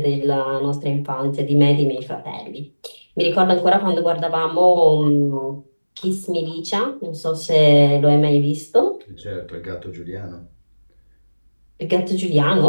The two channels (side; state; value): both; inverted; correlation -1.00